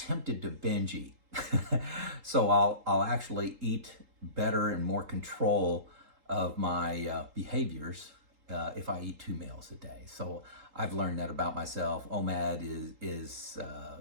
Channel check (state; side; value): late; left; 3.8 ms